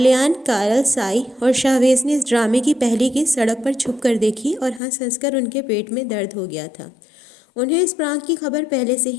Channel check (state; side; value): drops out; right; at 4.8 s